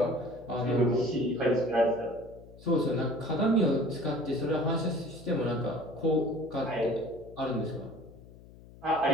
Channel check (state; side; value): noise; left; hum, 20 dB below the sound